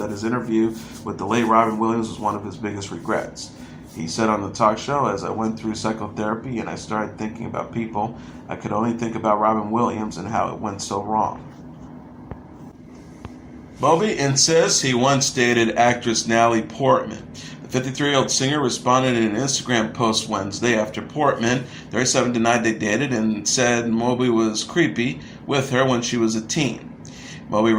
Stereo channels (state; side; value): identical; both; correlation 1.00